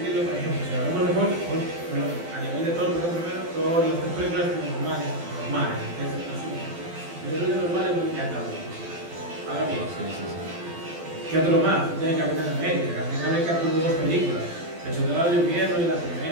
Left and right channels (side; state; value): left; late; 12 ms